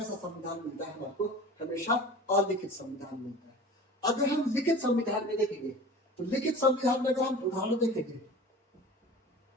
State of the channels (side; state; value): both; normal; correlation 0.39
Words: संविधान मिलता है हमारे को? हमेशा अलिखित संविधान मिलता है। अगर हम लिखित संविधान में देखेंगे तो लिखित संविधान में अगर हम उदाहरण देखेंगे